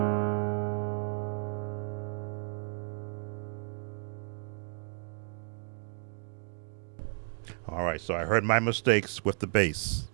All right, so I heard my mistakes with the bass.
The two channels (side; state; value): left; silent; digital silence